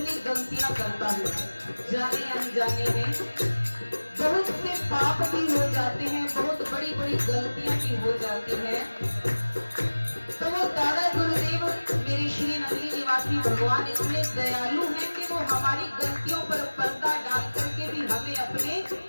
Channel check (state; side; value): inverted; both; correlation -1.00